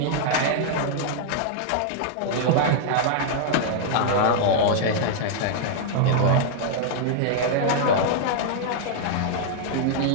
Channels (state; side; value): different; both; correlation -0.01